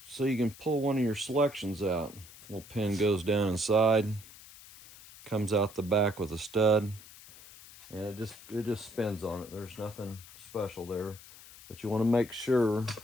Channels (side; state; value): left; noise; hiss, 19 dB below the sound